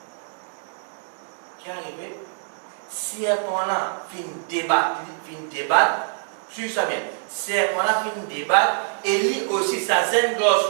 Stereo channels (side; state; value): left; silent; digital silence